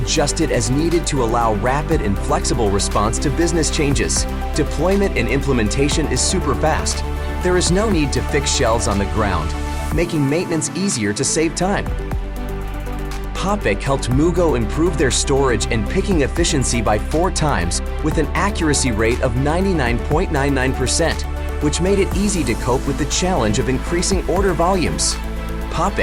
as needed to allow rapid and flexible response to business changes. Deployment and implementation is super fast. There is no need to fix shelves on the ground, making maintenance easier to save time. PopPick helped Mugo improve their storage and picking efficiency by 4 times with an accuracy rate of 99.99%, which made it easy to cope with the challenge of increasing order volumes.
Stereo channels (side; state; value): both; identical; correlation 1.00